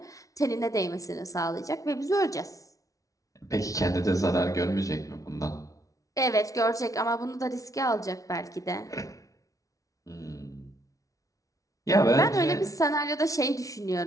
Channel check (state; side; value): late; right; 0.17 ms